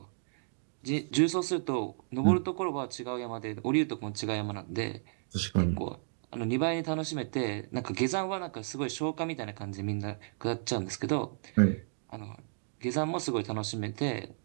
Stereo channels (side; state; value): left; silent; digital silence